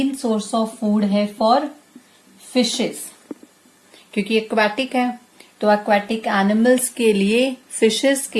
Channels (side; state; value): both; identical; correlation 1.00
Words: सोर्स ऑफ फूड है फॉर फिशेस, क्योंकि एक्वाटिक है, तो एक्वाटिक एनिमल्स के लिए, फिशेस